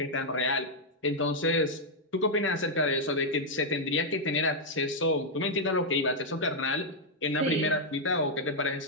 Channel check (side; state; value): both; normal; correlation -0.03